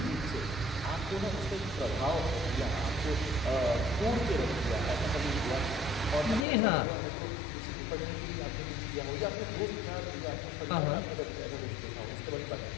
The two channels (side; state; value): right; drops out; at 6.5 s